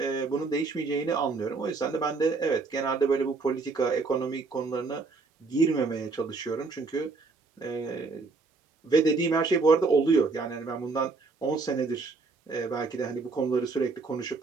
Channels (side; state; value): left; quieter; 4.0 dB